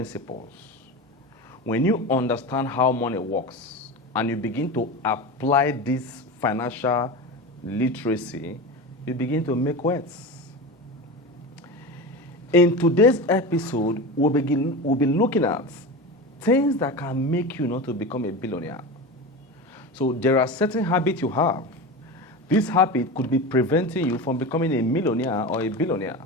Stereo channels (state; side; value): normal; both; correlation 0.26